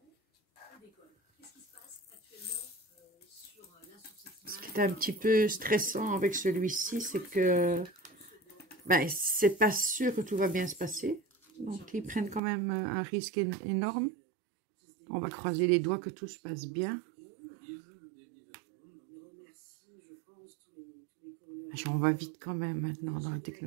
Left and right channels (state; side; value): drops out; left; at 12.4 s